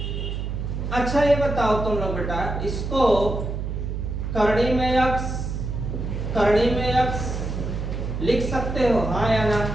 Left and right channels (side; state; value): right; noise; hum, 4 dB below the sound